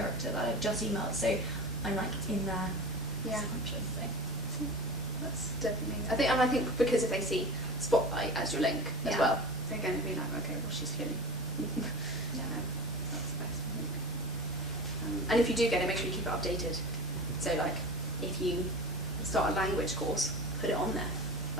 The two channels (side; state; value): both; normal; correlation 0.32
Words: that I've just emailed, so I'm like in there. Yeah. Subconscious, so. That's definitely. I think because if they see Spotlight as your link as well, they're going to be like, okay, well, she's feeling. That's the best, I think. And if you do get it, make sure you keep it updated. So, like, if you start a language course, put it on there.